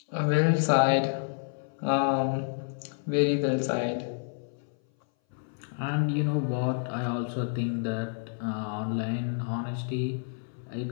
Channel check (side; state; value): right; silent; 59 dB below the other